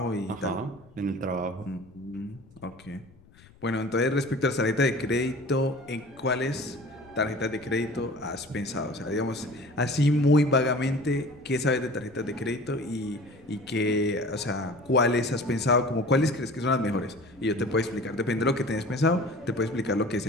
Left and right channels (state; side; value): noise; left; rumble, 25 dB below the sound